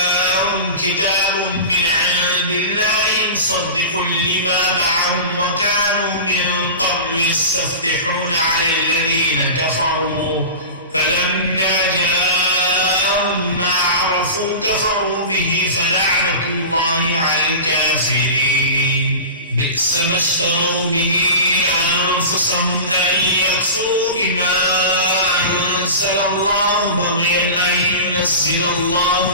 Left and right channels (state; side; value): inverted; both; correlation -0.31